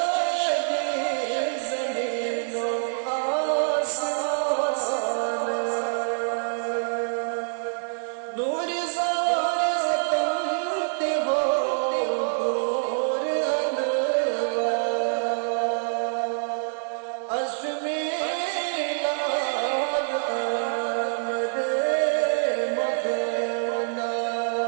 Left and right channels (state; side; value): silent; left; digital silence